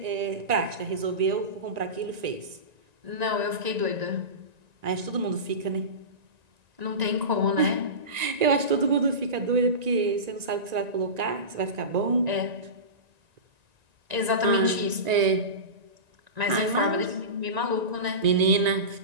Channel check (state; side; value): late; left; 1.9 ms